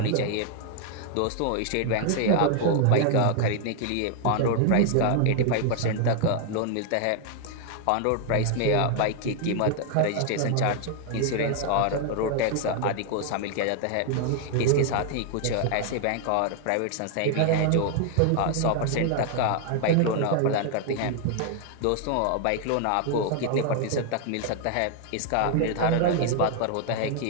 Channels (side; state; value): both; different; correlation 0.00